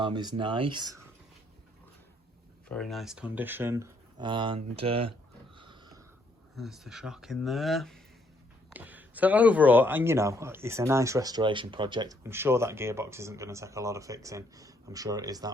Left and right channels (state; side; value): normal; both; correlation 0.70